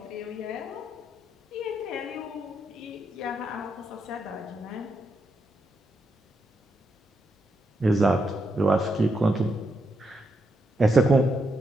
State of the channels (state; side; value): normal; both; correlation 0.81